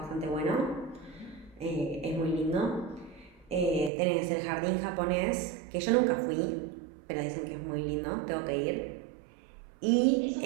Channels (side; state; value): left; drops out; at 3.9 s